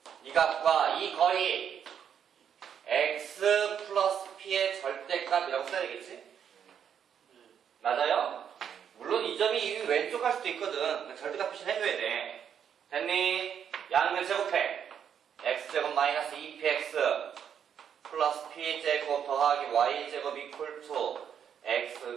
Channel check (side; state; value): left; quieter; 8.3 dB